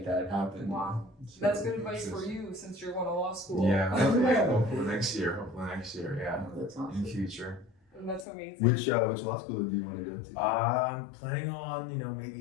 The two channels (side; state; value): right; drops out; at 8.2 s